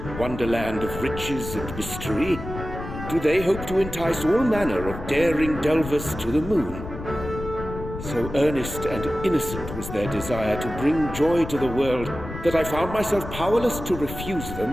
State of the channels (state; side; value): noise; left; rumble, 9 dB below the sound